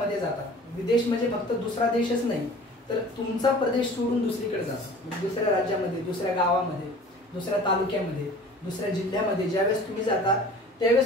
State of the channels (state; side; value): normal; both; correlation 0.45